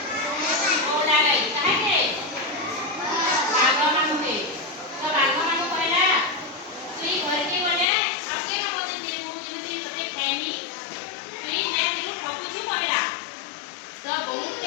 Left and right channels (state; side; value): drops out; right; at 7.9 s